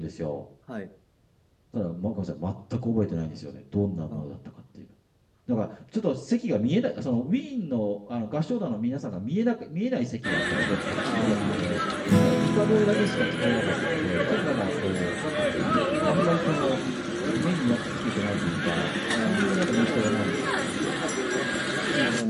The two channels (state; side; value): identical; both; correlation 1.00